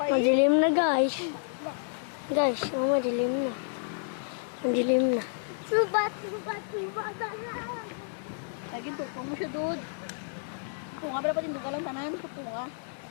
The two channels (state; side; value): silent; right; digital silence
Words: eh. Madilim na guys. Guys, oh, madilim na. Madilim na. Subat. Lagi tukong mo siya, dude. Punga ba dapat yung duka lang tanan? Punga.